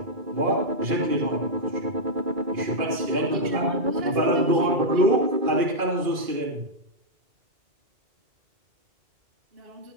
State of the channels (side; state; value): left; late; 2.4 ms